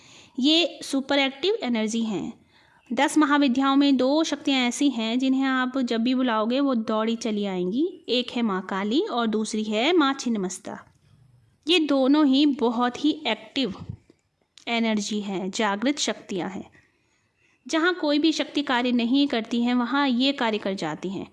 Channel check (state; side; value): identical; both; correlation 1.00